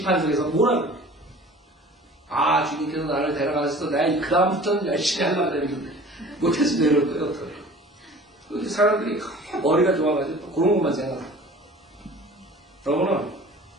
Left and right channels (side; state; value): both; normal; correlation 0.44